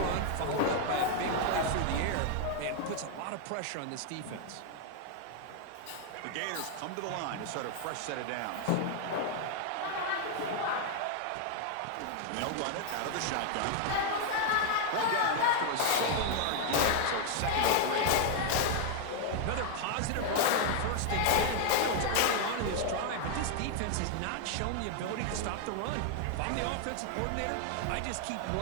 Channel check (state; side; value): different; both; correlation 0.00